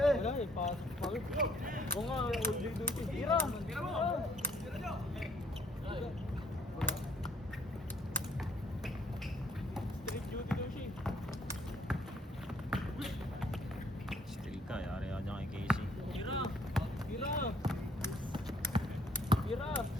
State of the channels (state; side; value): normal; both; correlation 0.65